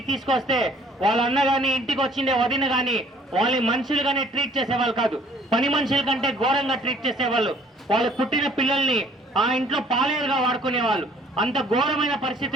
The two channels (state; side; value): normal; both; correlation 0.57